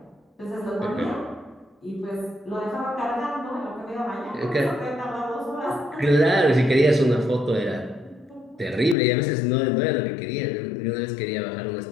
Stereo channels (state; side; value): drops out; right; at 9.0 s